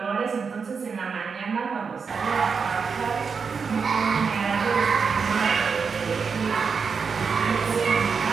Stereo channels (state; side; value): quieter; left; 5.6 dB